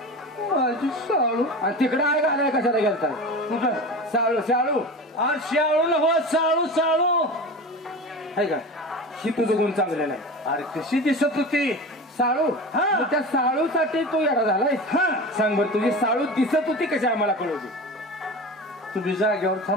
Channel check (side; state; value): both; normal; correlation 0.31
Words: माझी साळू. आणि तिकडं आहे घालाय कशाला गेलता कुठं साळू साळू अरे शाळू हो साळू साळू आहे का ही तुझं गुण चांगलं नाही. अरे कशी दिसत होती साळू हा. मग त्या साळूसाठी तू येडा झालाय. हा सांग बरं तुझी साळू दिसत होती कशी आम्हाला कळवली. तुम्ही जागेवर